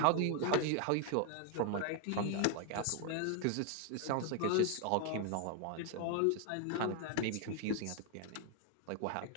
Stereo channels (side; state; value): both; different; correlation 0.01